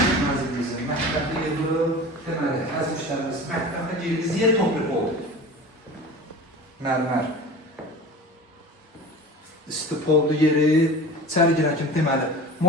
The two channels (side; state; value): both; normal; correlation 0.36